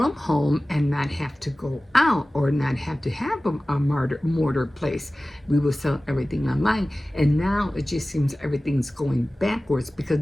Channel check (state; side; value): normal; both; correlation 0.97